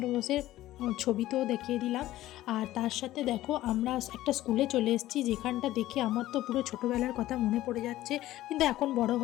বোসের ছবি তো দেখিয়ে দিলাম। আর তার সাথে দেখো আমরা একটা স্কুলে চলে এসেছি, যেখানটা দেখে আমার তো পুরো ছোটোবেলার কথা মনে পড়ে যাচ্ছে। কিন্তু এখন বড়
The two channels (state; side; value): quieter; right; 15.2 dB